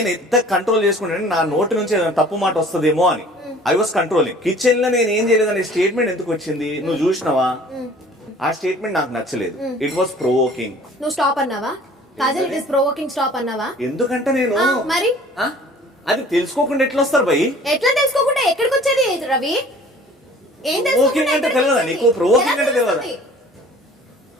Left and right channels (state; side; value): normal; both; correlation 0.49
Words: ఎంత కంట్రోల్ చేసుకుంటాను నా నోటి నుంచి ఏదైనా తప్పు మాట వస్తుందేమో అని ఐ వాస్ కంట్రోలింగ్. కిచెన్ లో నేను ఏం చేయలేదనే స్టేట్మెంట్ ఎందుకు వచ్చింది నువ్వు చూసినావా? ఆ స్టేట్మెంట్ నాకు నచ్చలేదు. It was provoking. నువ్వు స్టాప్ అన్నావా? Kajal it is provoking stop అన్నావా? ఎందుకంటే నేను మరి అది తెలుసుకోకుండా ఎట్లా వస్తారు భయ్? ఎట్లా తెలుసుకోకుండా ఎక్కడికి వచ్చేది రవి? ఏం ప్రొవోకింగ్ అంటే తెలియదా నీకు? ప్రొవోకింగ్ అంటే తెలియదా?